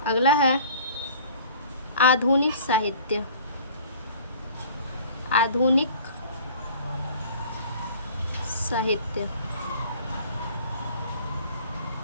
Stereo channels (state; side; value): inverted; both; correlation -0.48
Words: अगला है आधुनिक साहित्य। आधुनिक साहित्य।